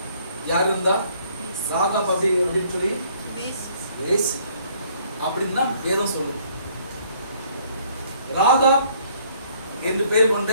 யாரு இருந்தா? ராகாப் அப்படின்னு சொல்லி வேசி அப்படின்னு தான் வேதம் சொல்லுது. ராகாப் என்று பெயர் கொண்ட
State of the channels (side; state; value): both; inverted; correlation -0.62